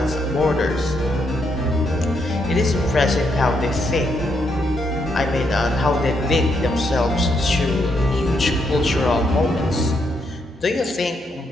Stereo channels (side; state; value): both; normal; correlation 0.77